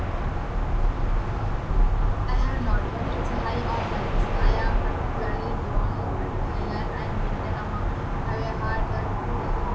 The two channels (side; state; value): both; identical; correlation 1.00